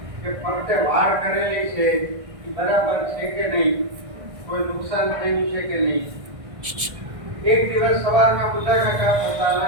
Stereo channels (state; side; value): late; left; 1.6 ms